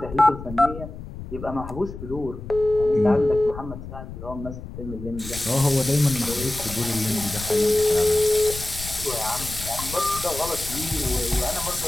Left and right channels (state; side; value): noise; left; rumble, 11 dB below the sound